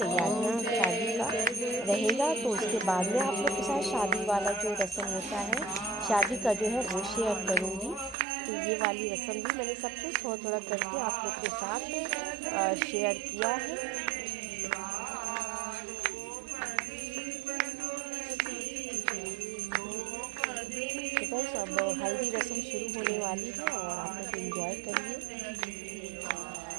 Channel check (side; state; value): left; drops out; at 8.2 s